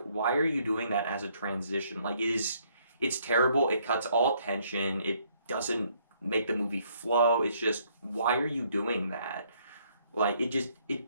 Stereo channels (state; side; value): inverted; both; correlation -0.67